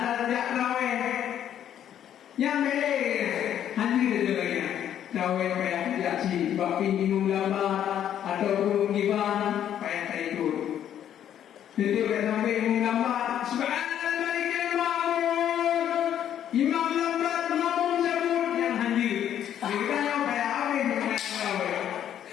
tak kawin. Yang boleh hadir je lagi. Kawin payah tidak si bagi minum gambar ataupun giban payah tak ikut. Itu sampai minum gambar. Imam lambat makmum cabut yang hadir. Mereka yang kaya awin dengan awin.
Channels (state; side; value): quieter; right; 10.2 dB